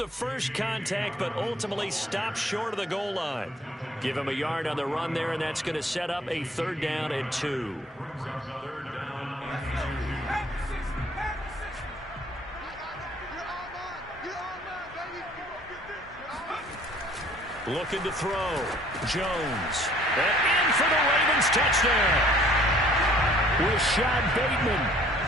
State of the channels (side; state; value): both; normal; correlation 0.57